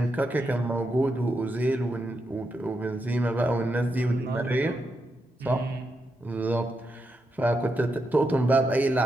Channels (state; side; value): normal; both; correlation 0.84